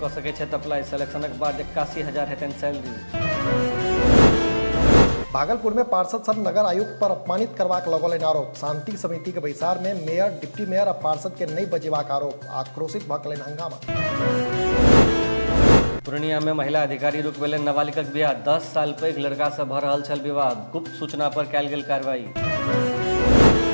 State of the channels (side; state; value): both; inverted; correlation -1.00